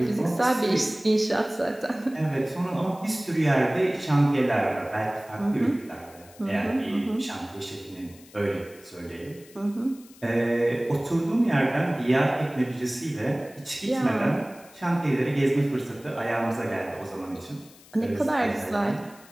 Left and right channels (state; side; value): noise; left; hiss, 24 dB below the sound